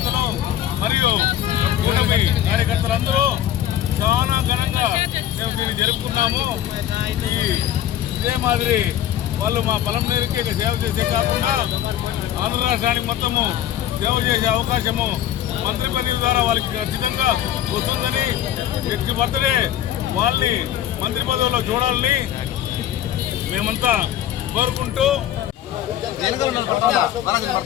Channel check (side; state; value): right; quieter; 11.4 dB